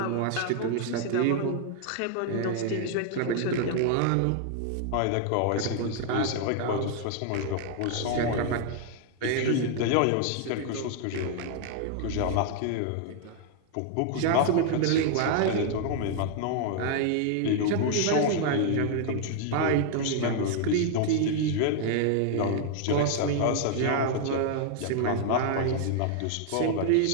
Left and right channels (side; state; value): both; different; correlation 0.00